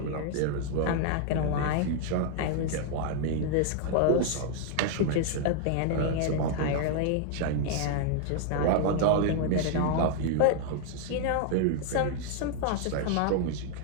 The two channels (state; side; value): different; both; correlation 0.00